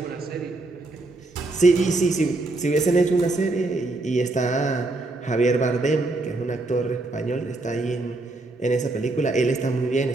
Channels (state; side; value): quieter; left; 3.0 dB